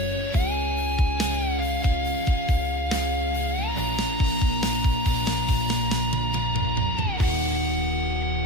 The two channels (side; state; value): both; normal; correlation 0.35